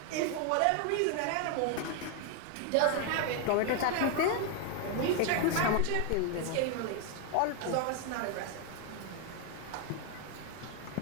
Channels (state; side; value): different; both; correlation 0.01